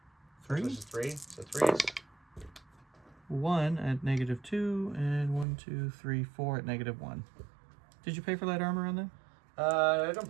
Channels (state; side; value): drops out; left; at 5.5 s